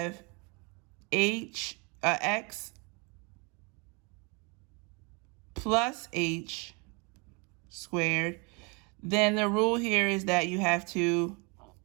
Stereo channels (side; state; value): left; quieter; 31.2 dB